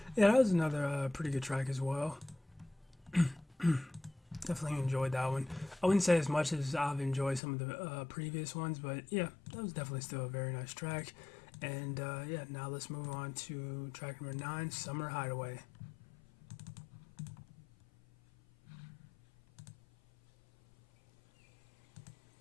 Yeah, that was another pretty good track as well. Definitely enjoyed that one. I wouldn't say as much as I've enjoyed some of the previous ones, but yeah, that was definitely still a very nice track. And yeah, now let's move on to track number 9, Summer Hideaway.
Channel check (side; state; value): right; drops out; at 7.4 s